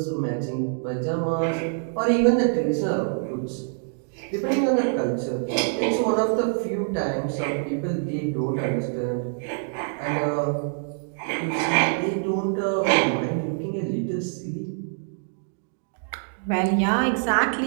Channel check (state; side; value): silent; left; digital silence